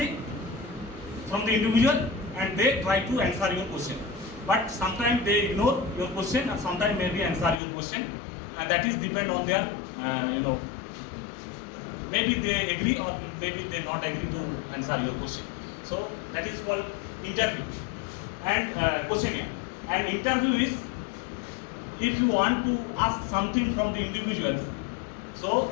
from the individual and they try to answer your question, but sometime they ignore your question আর sometime may be answer your question, and that is depend on their maybe they agree or maybe they not agree to answer your question. So that is called interview and questionnaire. And interview is if you want to ask something from the individuals, so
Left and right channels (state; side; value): drops out; right; at 7.6 s